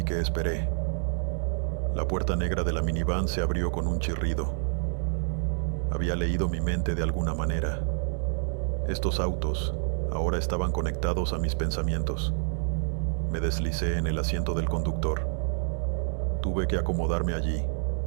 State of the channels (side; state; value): left; silent; digital silence